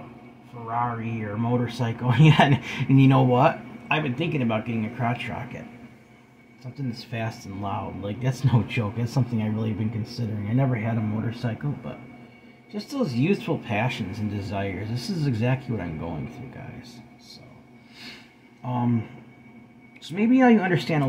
Ferrari or a motorcycle, yeah, and you know what? I've been thinking about getting a crotch rocket. Something that's fast and loud. Like, that's no joke. That's something I really have been considering. I never had a motorcycle, but just those youthful passions and desires. This is exactly what I'm going through, guys. So maybe now you understand a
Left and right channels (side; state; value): both; identical; correlation 1.00